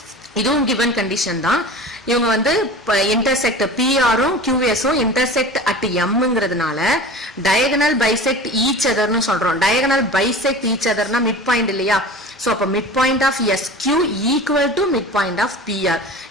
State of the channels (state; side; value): normal; both; correlation 0.36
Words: இதுவும் given condition தான். இவங்க வந்து intersect PRம் QSம் intersect at Mங்கிறதுனால diagonal bisect each other னு சொல்றோம். diagonal bisect each other னா midpoint இல்லையா? சோ அப்ப midpoint of SQ equal to midpoint of PR.